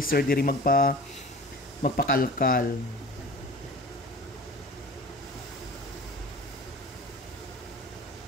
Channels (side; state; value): both; normal; correlation 0.40